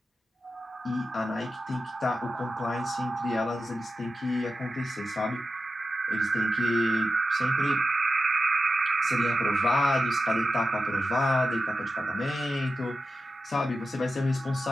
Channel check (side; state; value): both; normal; correlation 0.91